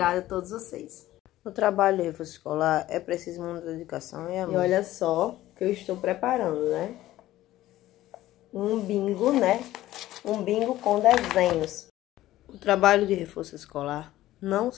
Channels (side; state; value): right; quieter; 15.0 dB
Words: a todos vocês. O trabalho de reforço escolar é preciso muita dedicação e amor. E olha só que eu estou preparando, né? Um bingo, né? Um bingo com desenhos. O trabalho de reforço escolar não